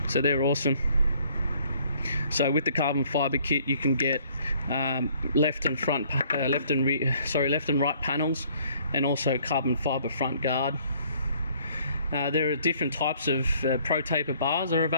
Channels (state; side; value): inverted; both; correlation -0.60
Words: so they're awesome. So with the carbon fiber kit, you can get left and right panels, and also carbon fiber front guard. There are different types of pro taper bars are